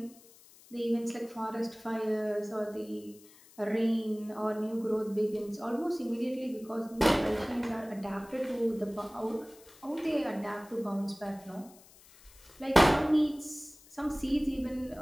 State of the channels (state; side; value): noise; left; hiss, 24 dB below the sound